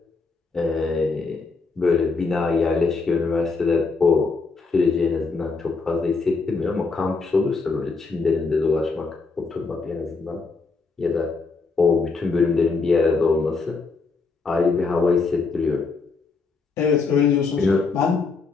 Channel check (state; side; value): quieter; right; 4.3 dB